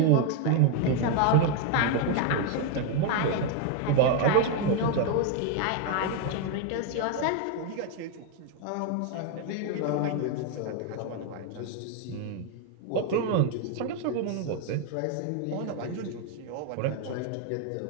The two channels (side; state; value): both; different; correlation 0.01